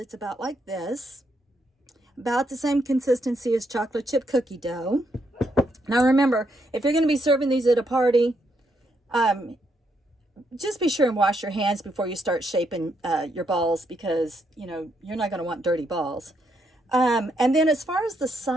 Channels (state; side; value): normal; both; correlation 0.77